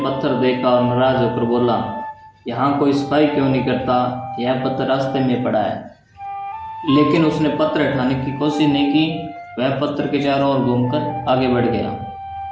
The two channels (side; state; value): both; identical; correlation 1.00